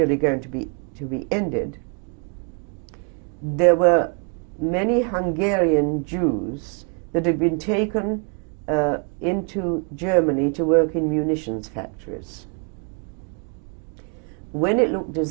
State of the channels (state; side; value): quieter; left; 38.6 dB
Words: going to be ended, there were many Hungarian Jews that had been taken into Germany to work in munitions factories. When it looked as